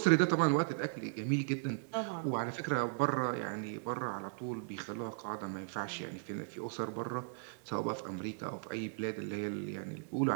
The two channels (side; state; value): left; silent; digital silence